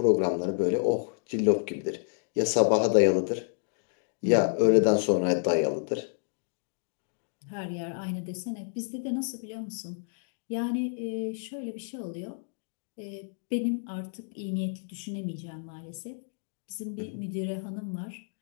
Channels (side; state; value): right; silent; digital silence